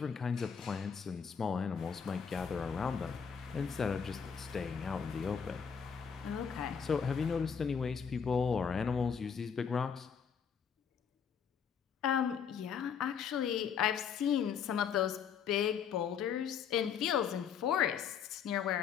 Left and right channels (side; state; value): right; quieter; 7.1 dB